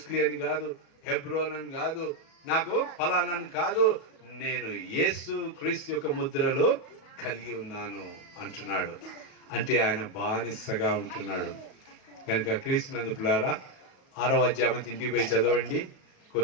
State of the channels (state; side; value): late; right; 38 ms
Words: అని కాదు, హెబ్రోన్ అని కాదు, నాకు ఫలానాని కాదు, నేను యేసు క్రీస్తు యొక్క ముద్రలు కలిగి ఉన్నాను అంటున్నాడు. అంటే ఆయన బానిసగా ఉంటున్నాడు. కనుక క్రీస్తునందు పిల్లారా, 6వ అధ్యాయం ఇంటికి పోయి చదవండి.